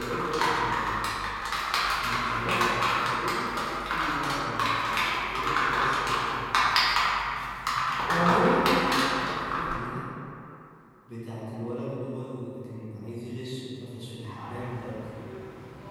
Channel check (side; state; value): both; identical; correlation 1.00